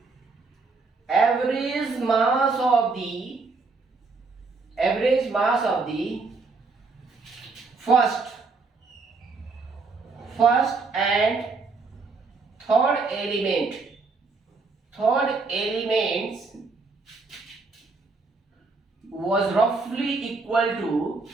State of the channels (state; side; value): quieter; left; 4.1 dB